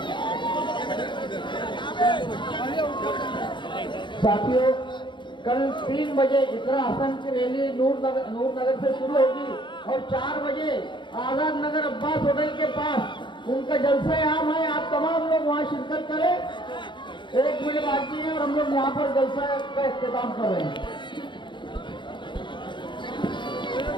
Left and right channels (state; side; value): late; right; 0.23 ms